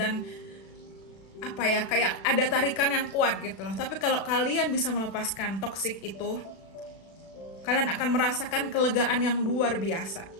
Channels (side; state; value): right; late; 36 ms